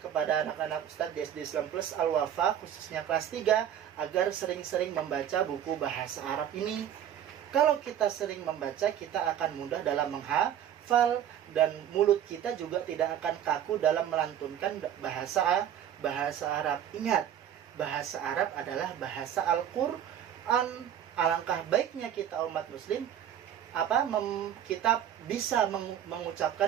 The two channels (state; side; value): quieter; left; 10.1 dB